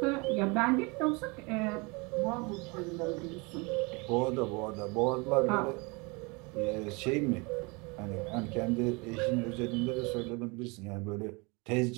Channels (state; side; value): quieter; left; 28.3 dB